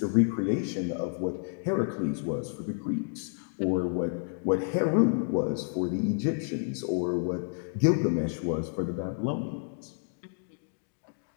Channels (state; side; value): silent; right; 58 dB below the other